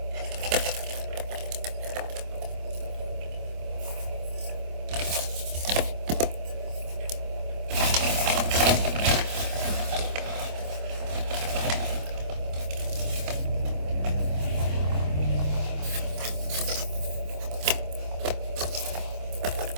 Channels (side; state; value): left; late; 25 ms